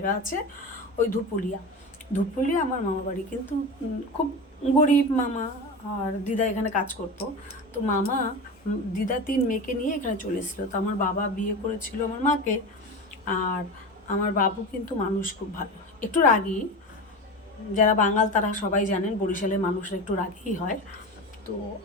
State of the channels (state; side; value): normal; both; correlation 0.26